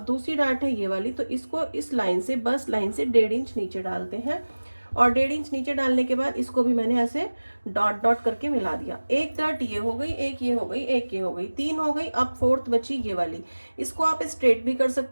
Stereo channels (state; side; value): inverted; both; correlation -1.00